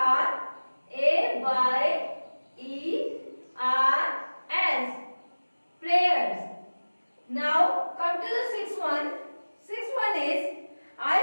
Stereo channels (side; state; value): both; inverted; correlation -1.00